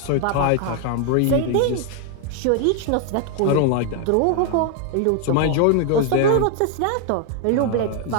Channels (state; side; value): different; both; correlation 0.01